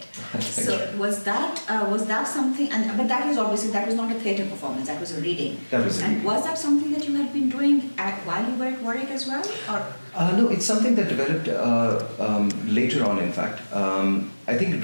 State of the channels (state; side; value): inverted; both; correlation -1.00